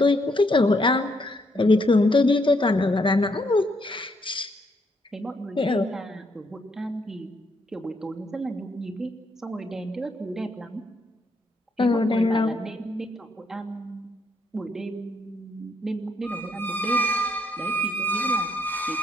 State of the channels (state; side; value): normal; both; correlation 0.73